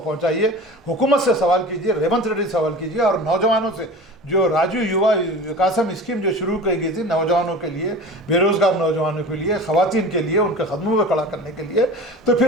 हुकूमत से सवाल कीजिए, रेवंत रेड्डी सवाल कीजिए। और नौजवानों से जो राजू युवा विकासम स्कीम जो शुरू की गई थी नौजवानों के लिए, बेरोज़गार नौजवानों के लिए, ख़वातीन के लिए, उनके कदमों में खड़ा करने के लिए, तो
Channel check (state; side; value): normal; both; correlation 0.36